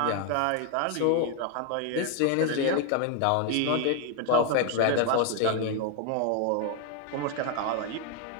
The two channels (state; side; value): different; both; correlation 0.00